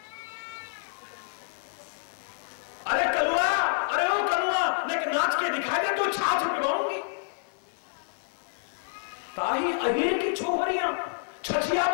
अरे कलुआ, अरे ओ कलुआ, नहीं नाच के दिखाई दे तो छाछ पिवाऊंगी। ताही अहीर की छोहरियां छछिया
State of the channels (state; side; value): silent; right; digital silence